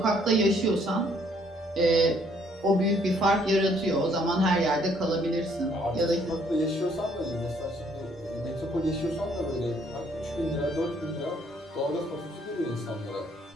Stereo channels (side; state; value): both; normal; correlation 0.65